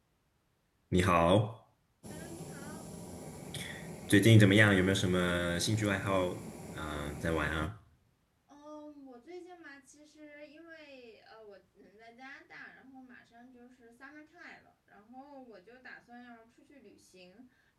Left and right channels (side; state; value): both; identical; correlation 1.00